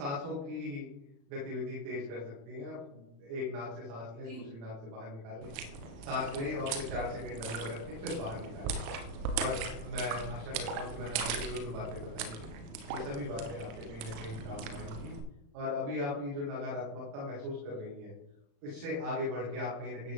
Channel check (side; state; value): left; late; 36 ms